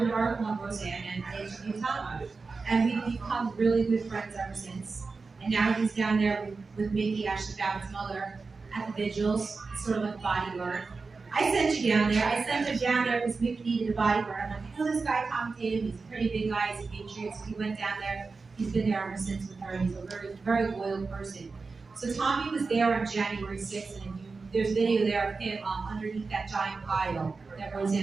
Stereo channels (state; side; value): quieter; left; 4.2 dB